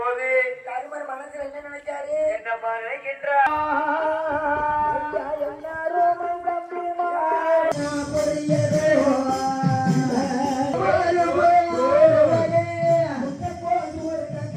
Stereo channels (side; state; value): both; identical; correlation 1.00